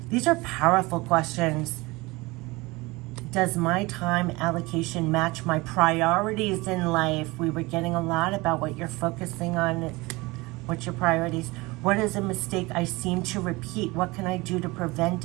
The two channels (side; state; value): left; quieter; 22.8 dB